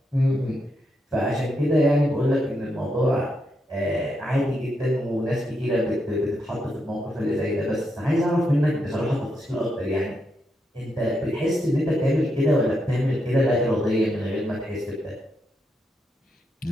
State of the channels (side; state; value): both; normal; correlation 0.82